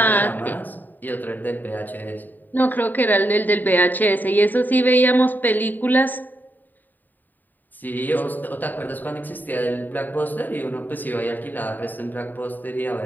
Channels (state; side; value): late; right; 0.088 ms